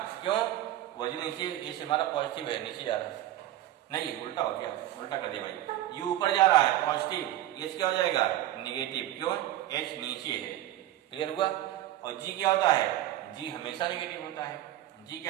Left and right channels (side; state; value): left; quieter; 13.8 dB